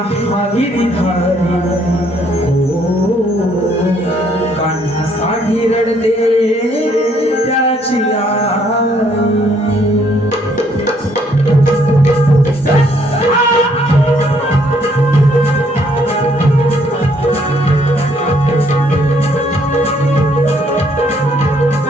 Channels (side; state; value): both; normal; correlation 0.67